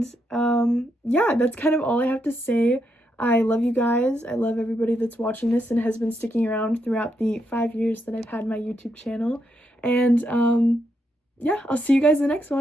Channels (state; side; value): normal; both; correlation 0.80